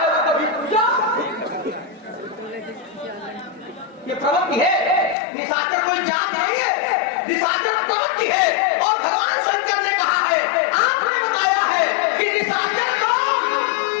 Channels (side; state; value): right; drops out; at 5.2 s